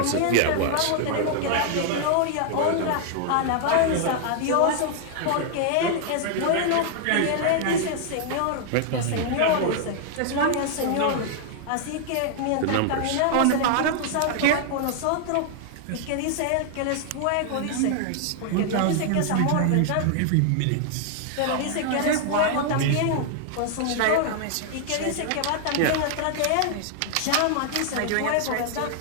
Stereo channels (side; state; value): both; different; correlation 0.00